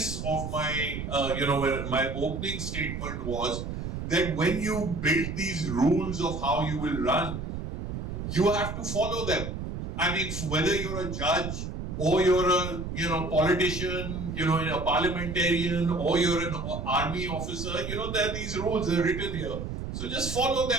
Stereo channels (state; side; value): noise; right; rumble, 5 dB below the sound